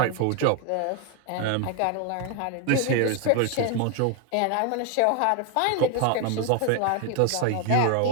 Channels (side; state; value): both; different; correlation 0.01